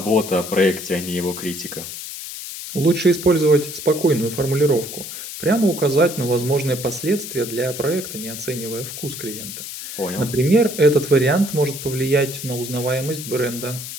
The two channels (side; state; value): left; noise; hiss, 9 dB below the sound